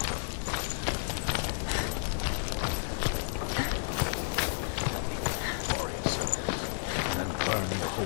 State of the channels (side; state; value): right; silent; digital silence